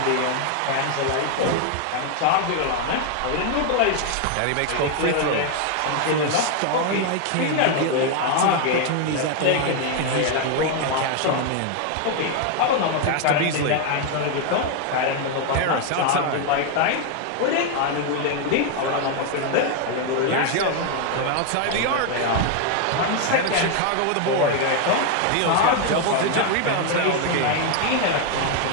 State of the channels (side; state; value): both; different; correlation 0.01